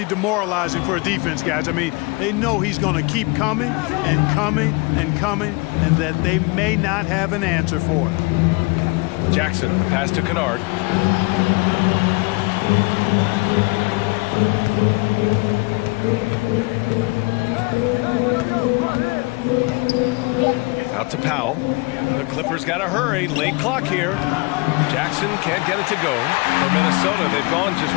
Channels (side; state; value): right; quieter; 27.5 dB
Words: demoralizing for a defense, guys. I mean, they know he's going to keep coming and coming and coming, and that they may not have an answer for it. Jackson, the pass to Kennard. to Powell. The Clippers got to hurry. Late clock here. Jackson can't get it to go. For Minnesota, they've gone just